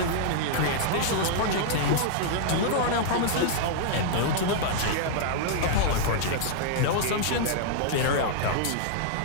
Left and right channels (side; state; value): both; different; correlation -0.01